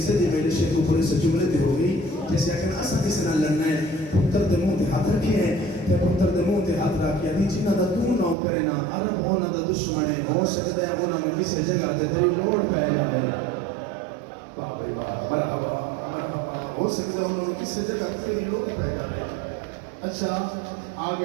دی میرے شیخ اوپر سے جملے تے ہو گئی جیسے کہ اساں کس نہ لڑنا ہے پتر دے منہ تے ہاتھ رکھے ہیں تے پتر دے منہ تے ہاتھ رکھ کے دی جنہ دا تو نہ کرے نا عرب ہونا دا دشمن ہے ہو سکدا ہے انہاں نو کسے جگہ تے تیری لوڑ پے جاوے واہ بھائی واہ مرحبا مرحبا ہو سکتا ہے انہوں نے کسی جگہ تیری لوگ پہ جائے اچھا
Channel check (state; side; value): drops out; left; at 8.3 s